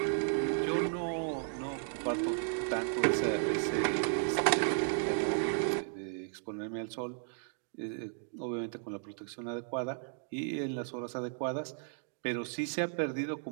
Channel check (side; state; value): left; silent; digital silence